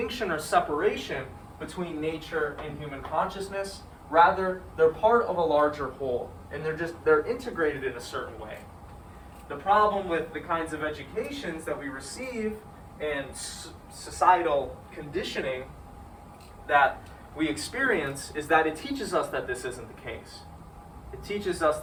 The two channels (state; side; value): identical; both; correlation 1.00